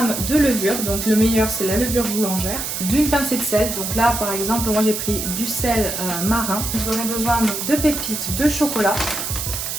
de levure, donc le meilleur c'est la levure boulangère, d'une pincée de sel, donc là par exemple moi j'ai pris du sel marin. Vous aurez besoin donc, de pépites de chocolat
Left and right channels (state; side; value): noise; right; hiss, 4 dB below the sound